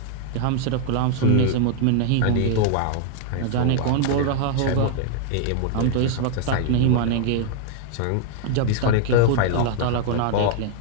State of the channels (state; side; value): different; both; correlation -0.01